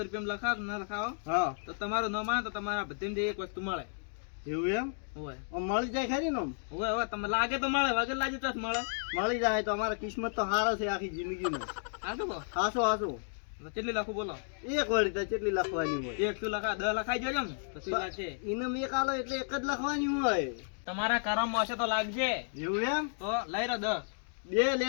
રૂપિયા લખાવો ના લખાવો હા તો તમારું ન માને તો તમારા બધાને એક વસ્તુ મળે એવું એમ હોય આમ મળી જાય ખરી ને આમ? હોય હોય તમને લાગે તો મળે વગર લાગે તો જ મળે મળી જાય તો અમારા કિસ્મત તો હારા છે આખી જિંદગીનો હા તો હાસો હાસો કેટલી લખું બોલો એક વળી તો કેટલી લખવાની હોય એક શું લખા 10 લખાઈ જોજો ને તો શું વાત છે ઇનામ એક આલો એટલે એક જ લખવાની હોય તમારા કરમમાં હશે તો લાગશે એવું એમ તો લઈ રહ્યો 10 બે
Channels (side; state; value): right; silent; digital silence